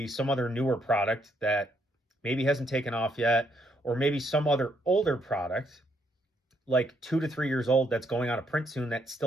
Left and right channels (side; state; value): both; normal; correlation 0.74